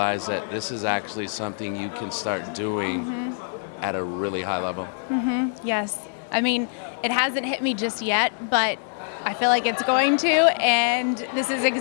that this is actually something you can start doing at a really high level? Yes. I mean, it hasn't hit me just yet, but I feel like it's going to, and this is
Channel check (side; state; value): right; silent; 62 dB below the other